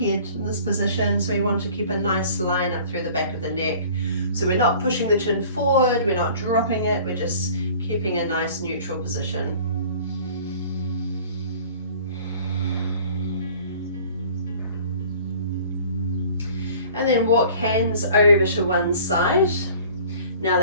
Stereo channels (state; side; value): inverted; both; correlation -0.48